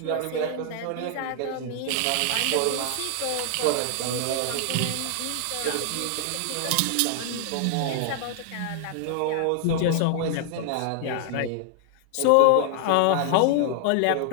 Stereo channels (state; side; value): different; both; correlation 0.00